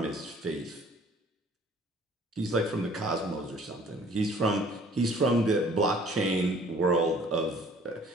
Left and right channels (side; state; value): both; normal; correlation 0.54